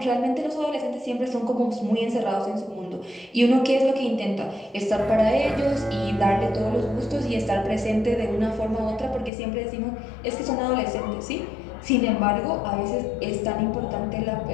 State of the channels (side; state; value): right; drops out; at 9.3 s